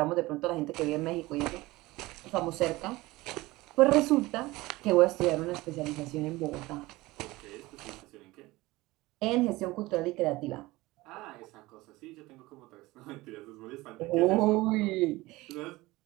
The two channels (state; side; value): quieter; left; 20.0 dB